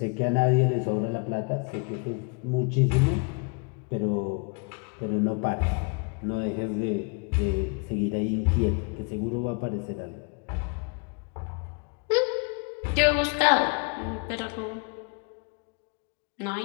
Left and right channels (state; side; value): quieter; right; 34.2 dB